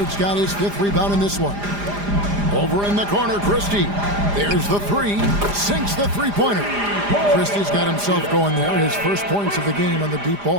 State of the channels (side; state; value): left; late; 4.9 ms